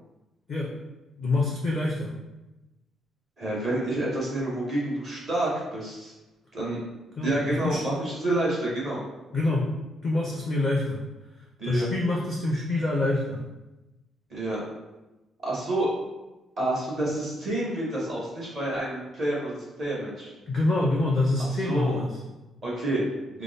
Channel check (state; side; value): normal; both; correlation 0.75